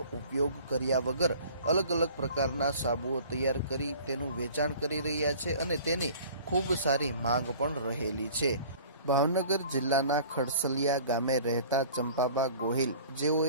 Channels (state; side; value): inverted; both; correlation -0.47